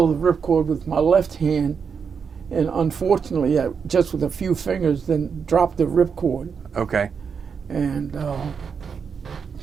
the ripcord with my left hand, and unfortunately, I, just with a few fingers, then dropped the ripcord. Okay. And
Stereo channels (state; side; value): quieter; left; 6.2 dB